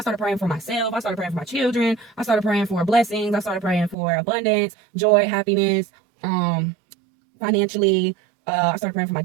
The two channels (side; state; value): left; drops out; at 4.0 s